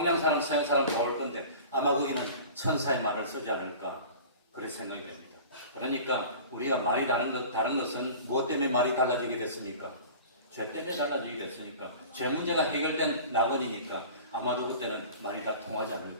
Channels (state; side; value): inverted; both; correlation -0.40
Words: 사람, 서양 사람 다 올 건데 아마 거기는 천사의 말을 쓰지 않을까 그렇게 생각이 됩니다. 그러니까 우리가 말이 다른 것은 무엇 때문에 말이 달라지게 됐습니까? 죄 때문에 달라지게 됐으니까 죄 문제가 해결된 낙원이니까 아마도 그때는 말이 다 통하지